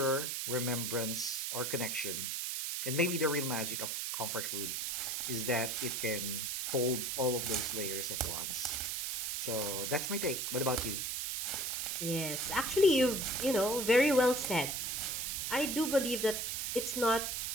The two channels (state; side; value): noise; right; hiss, 1 dB below the sound